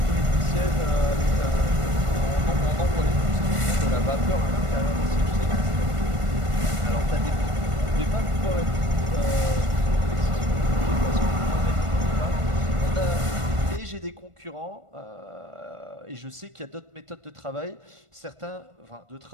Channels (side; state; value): left; late; 1.5 ms